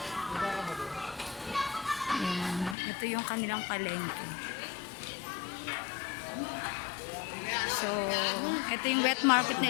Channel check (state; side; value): drops out; right; at 2.8 s